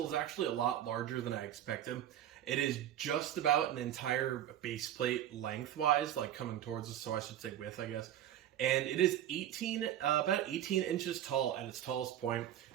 is actually a lot larger than I expected. It is just about an entire base plate lengthwise, like coming towards us, so I should say width, I guess. And it is about 18 inches tall at its tallest point,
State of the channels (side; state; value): left; quieter; 11.3 dB